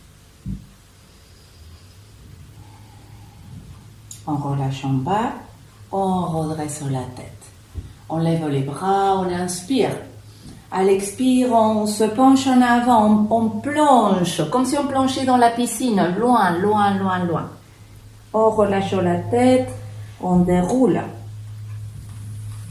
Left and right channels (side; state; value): both; identical; correlation 1.00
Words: On relâche en bas, on redresse la tête. On lève les bras, on inspire. À l'expire, on se penche en avant, on plonge, comme si on plongeait dans la piscine, loin. On relâche la tête, on déroule.